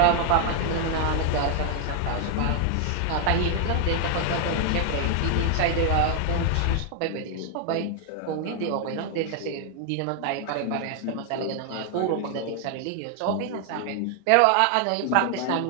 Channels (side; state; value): both; different; correlation 0.00